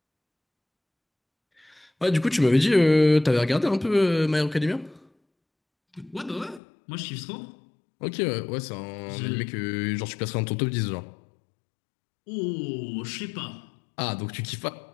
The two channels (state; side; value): drops out; right; at 6.6 s